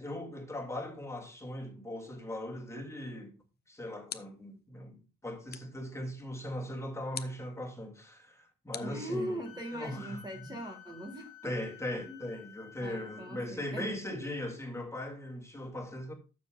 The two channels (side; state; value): both; normal; correlation 0.69